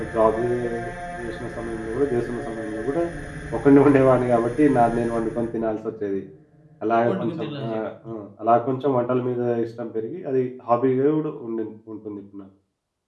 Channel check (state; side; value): identical; both; correlation 1.00